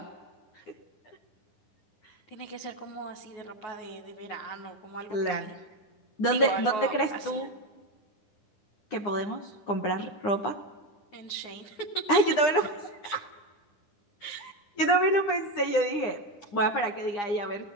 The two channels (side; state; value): right; late; 9.8 ms